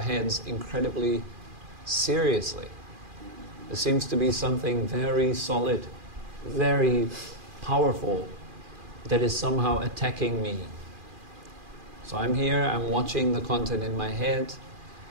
incredibly seriously. There seems to be something very solid, very powerful, that is somehow attacking me. So I'm here, I'm watching the content in my head,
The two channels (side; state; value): left; late; 2.4 ms